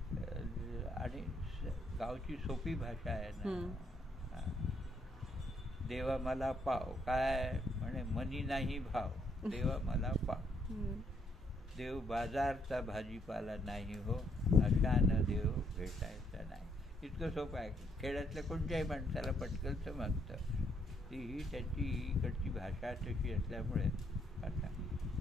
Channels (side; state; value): both; normal; correlation 0.72